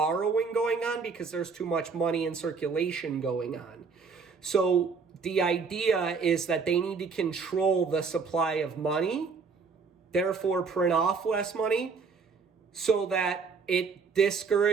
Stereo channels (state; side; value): quieter; left; 5.1 dB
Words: going on because there's too much money in circulation going on. So the idea is that they need to control the supply of money, therefore print off less money, so that it